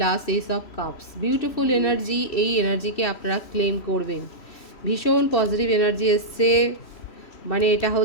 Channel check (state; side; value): late; right; 3.1 ms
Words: S of cups, beautiful energy, এই এনার্জিকে আপনারা ক্লেম করবেন। ভীষণ পজিটিভ এনার্জি এসছে, মানে এটা